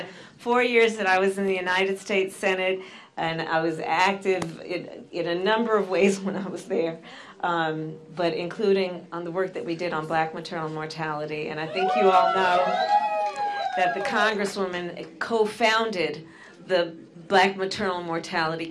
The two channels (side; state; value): both; identical; correlation 1.00